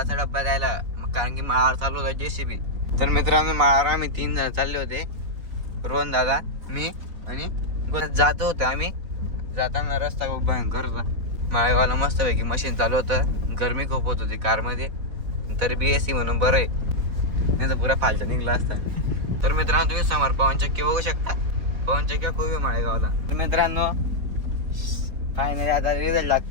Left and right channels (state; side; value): late; left; 4.1 ms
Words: डब्बा द्यायला, कारण की माळावर चालू होता JCB. तर मित्रांनो, माळावर आम्ही 3 जण चालले होते, रोहन दादा, मी आणि जातो होतो. आम्ही जाताना रस्ता खूप भयंकर होता. माळेगावला मस्तपैकी मशीन चालू होतं, गरमी खूप होत होती कारमध्ये, तरी BSC म्हणून बरं आहे, नाही तर पुरा फालचा निघला असता. तर मित्रांनो, तुम्ही समोर पवन चक्की बघू शकता. पवन चक्की खूप आहे माळेगावला. तर मित्रांनो, फायनली आता रिझल्ट